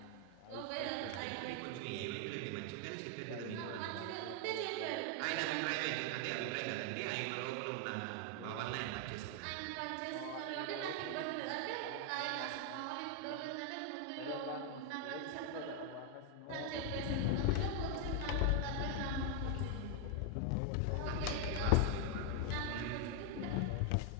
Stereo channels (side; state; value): both; different; correlation 0.00